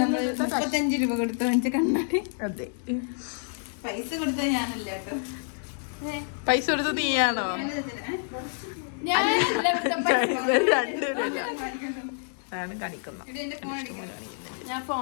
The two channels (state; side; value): silent; right; 59 dB below the other